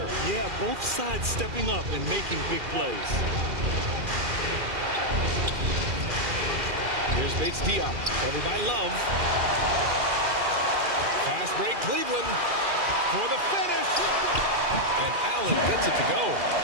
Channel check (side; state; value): left; late; 2.4 ms